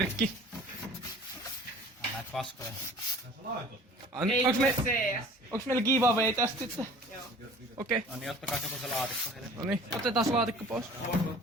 Näitä paskoja. Onks meillä giveaway tästä sitten? Joo. Okei. No niin, ottakaa kato se laatikko heille. No niin, otetaan laatikko pois.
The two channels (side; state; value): both; normal; correlation 0.47